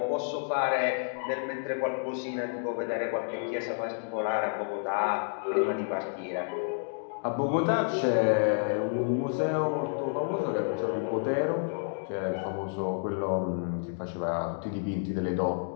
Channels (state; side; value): silent; right; digital silence